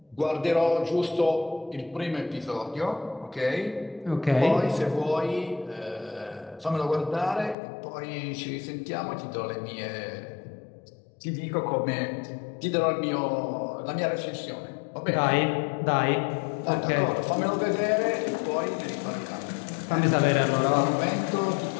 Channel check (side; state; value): right; drops out; at 7.6 s